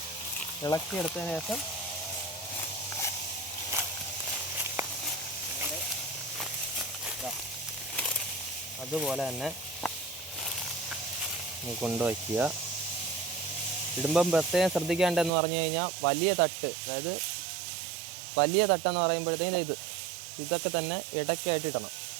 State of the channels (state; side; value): drops out; left; at 15.3 s